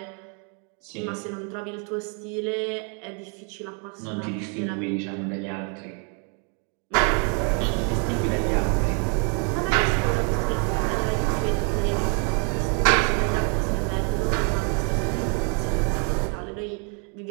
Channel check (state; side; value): quieter; left; 38.6 dB